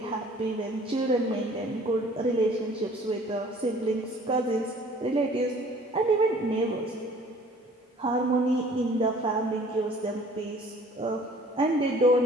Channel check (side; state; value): both; normal; correlation 0.52